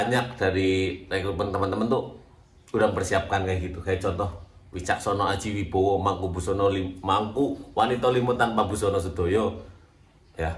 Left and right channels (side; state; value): both; identical; correlation 1.00